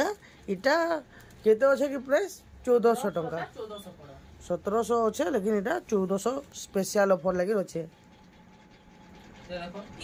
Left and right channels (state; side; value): identical; both; correlation 1.00